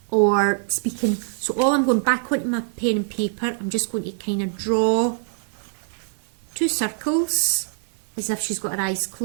or speaking. So all I'm going back onto my pen and paper, I'm just going to kind of draw two circles as if she's got her eyes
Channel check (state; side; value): silent; left; 63 dB below the other